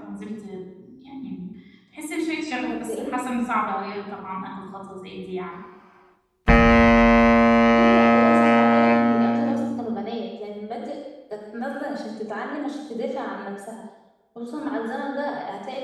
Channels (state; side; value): identical; both; correlation 1.00